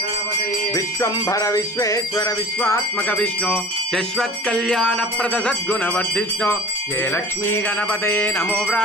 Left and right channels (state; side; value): normal; both; correlation 0.41